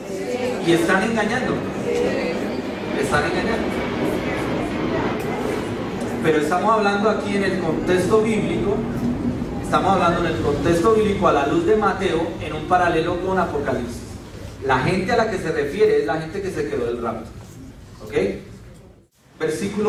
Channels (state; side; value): identical; both; correlation 1.00